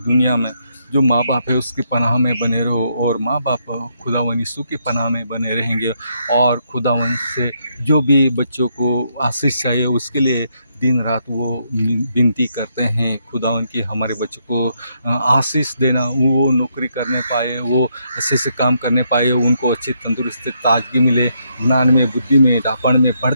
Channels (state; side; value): inverted; both; correlation -0.76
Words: में जो माँ बाप है उसकी पनाह में बने रहो, और माँ बाप खुदावन यीशु की पनाह में बने रहेंगे। और खुदावन से जो भी बच्चों को आशीष चाहिए उसके लिए दिन रात वो विनती करते हैं खुदावन की हमारे बच्चों को आशीष देना, वो नौकरी करने पाए, वो अच्छे से काम करने पाए, उनको अच्छी तंदुरुस्ती ताजगी मिले, ज्ञान में बुद्धि में डापण में